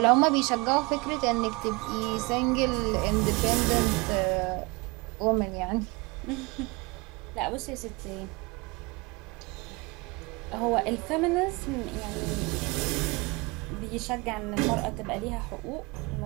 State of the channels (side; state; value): left; quieter; 26.4 dB